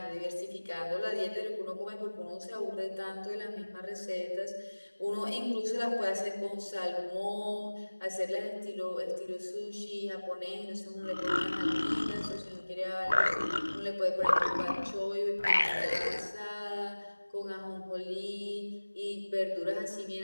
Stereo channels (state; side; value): inverted; both; correlation -1.00